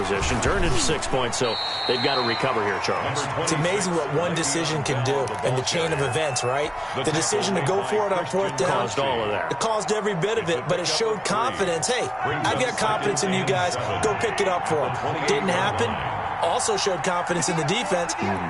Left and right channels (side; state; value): both; identical; correlation 1.00